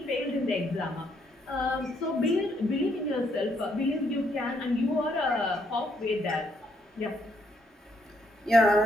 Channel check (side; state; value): both; normal; correlation 0.73